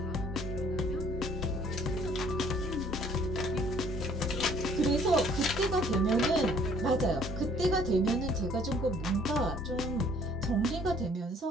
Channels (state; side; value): normal; both; correlation 0.58